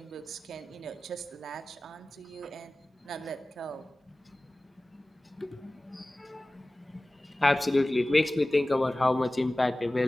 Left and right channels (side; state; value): both; normal; correlation 0.97